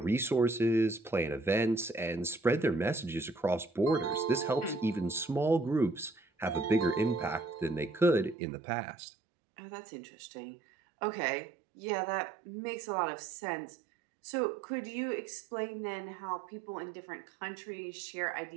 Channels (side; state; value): left; drops out; at 8.3 s